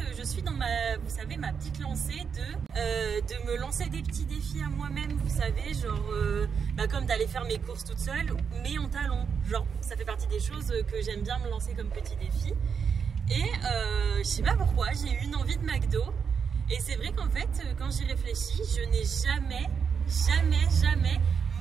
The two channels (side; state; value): left; quieter; 6.5 dB